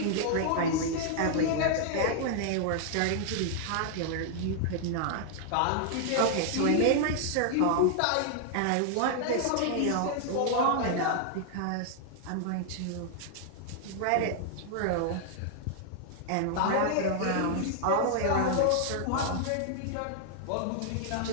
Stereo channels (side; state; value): both; different; correlation -0.01